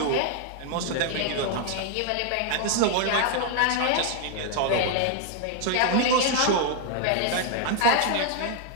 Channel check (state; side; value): different; both; correlation 0.00